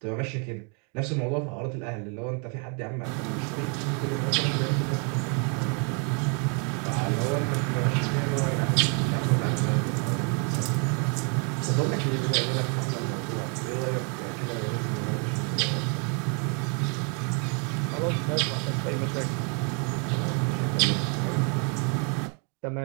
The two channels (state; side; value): quieter; left; 36.5 dB